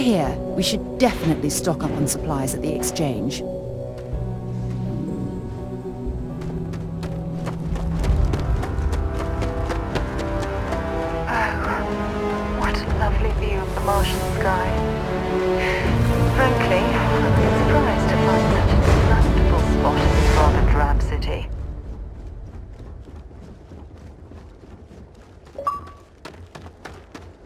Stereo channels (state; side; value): identical; both; correlation 1.00